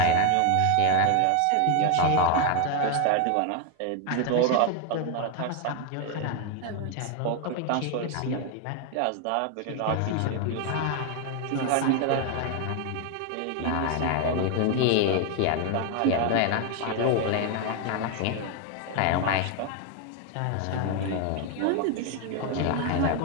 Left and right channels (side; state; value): both; different; correlation 0.01